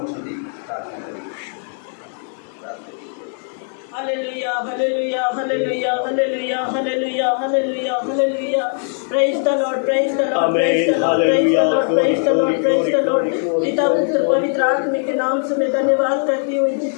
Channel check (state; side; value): silent; right; 57 dB below the other